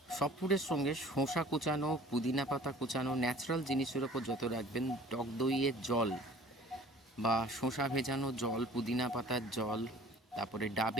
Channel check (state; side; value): normal; both; correlation 0.48